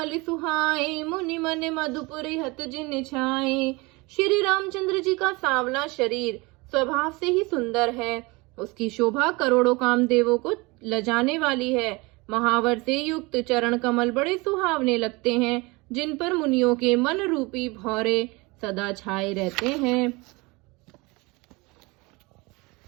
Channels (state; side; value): quieter; left; 25.0 dB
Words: सुहाए मुनि मन मधुपुर हत जिन छाए। श्री रामचंद्र जी का सांवला शरीर स्वभाव से ही सुंदर है। उसकी शोभा करोड़ों कामदेवों को लजाने वाली है। महावर से युक्त चरण कमल बड़े सुहावने लगते हैं, जिन पर मुनियों के मन रूपी भौरे सदा छाए रहते हैं।